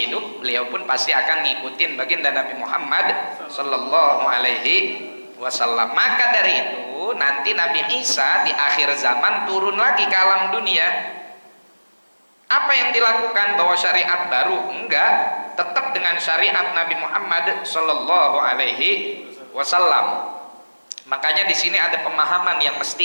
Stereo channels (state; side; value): inverted; both; correlation -1.00